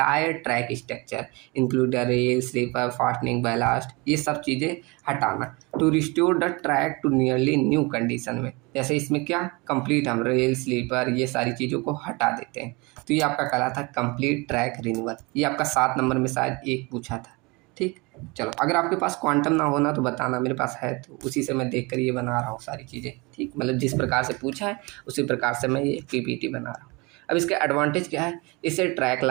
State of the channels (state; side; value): quieter; left; 26.5 dB